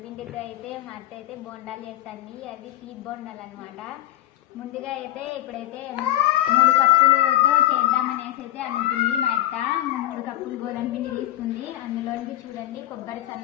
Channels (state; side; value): quieter; right; 14.6 dB